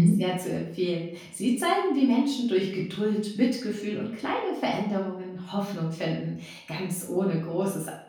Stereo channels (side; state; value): both; identical; correlation 1.00